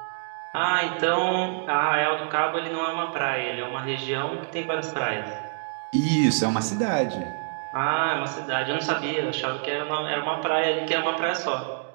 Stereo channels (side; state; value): left; silent; digital silence